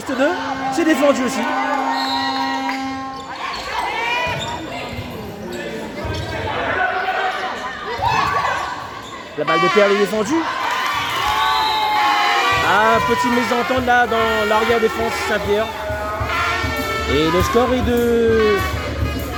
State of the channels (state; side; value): identical; both; correlation 1.00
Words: 2. C'est défendu aussi. La balle de Perle est défendue. Ah, petite mésentente là dans l'arrière défense Saint-Pierre. Et le score est de